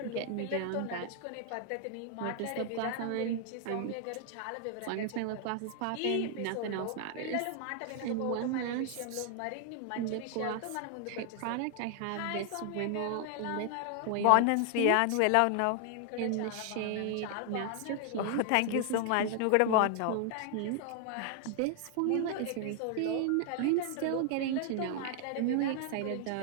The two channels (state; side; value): different; both; correlation 0.00